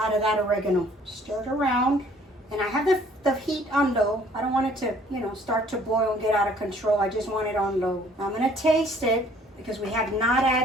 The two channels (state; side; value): normal; both; correlation 0.58